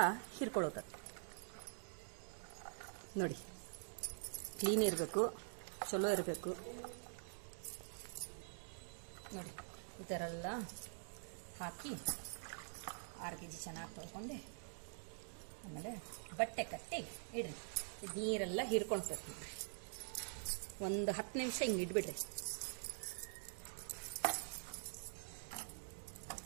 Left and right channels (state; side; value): silent; left; digital silence